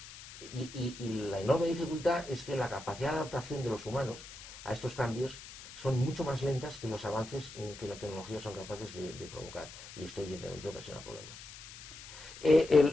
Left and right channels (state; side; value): noise; left; hiss, 15 dB below the sound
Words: Y la enorme dificultad es que la capacidad de adaptación de los humanos a estos cambios son mucho más lentas que los avances que la tecnología son capaces de provocar, y esto evidentemente ocasiona problemas.